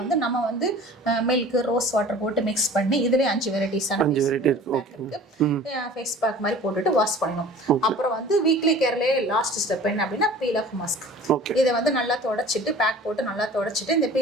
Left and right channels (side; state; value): both; normal; correlation 0.44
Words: நம்ம வந்து மில்க், ரோஸ் வாட்டர் போட்டு மிக்ஸ் பண்ணி இதுலேயே 5 வெரைட்டிஸான ஃபேஸ் பேக் மாதிரி போட்டுட்டு வாஷ் பண்ணணும். அப்புறம் வந்து வீக்லி கேர்லேயே லாஸ்ட் ஸ்டெப் என்ன அப்படின்னா பீல் ஆஃப் மாஸ்க். இதை வந்து நல்லா தொடச்சிட்டு பேக் போட்டு நல்லா தொடச்சிட்டு இந்த